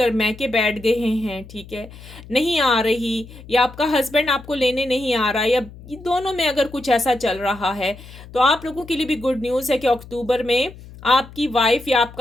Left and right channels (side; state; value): left; noise; hum, 18 dB below the sound